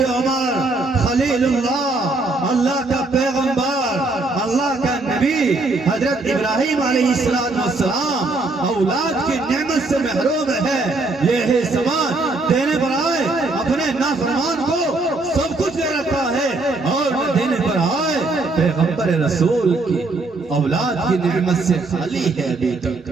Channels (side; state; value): left; quieter; 3.3 dB